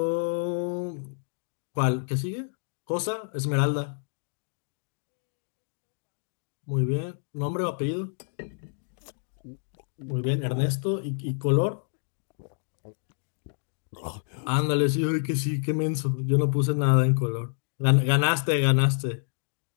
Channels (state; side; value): silent; right; digital silence